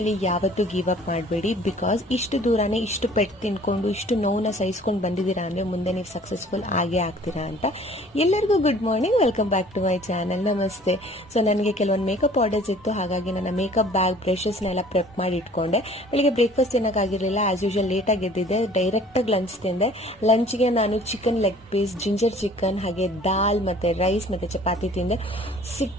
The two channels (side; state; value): both; normal; correlation 0.52